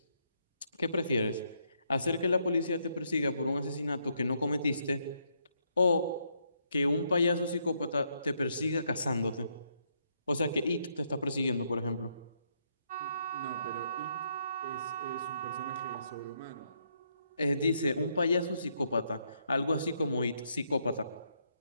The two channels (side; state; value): both; inverted; correlation -0.75